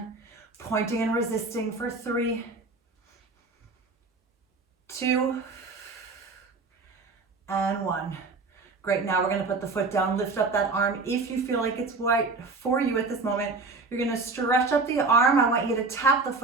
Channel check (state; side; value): quieter; left; 3.8 dB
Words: pointing and resisting for 3, 2, and 1. Great, now we're gonna put the foot down, lift up that arm. If you feel like it's right for you at this moment, you're gonna stretch up the arm. I want you to tap the